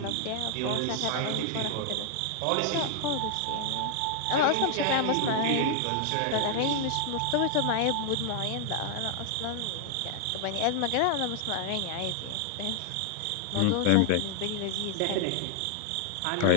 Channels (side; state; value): both; different; correlation 0.00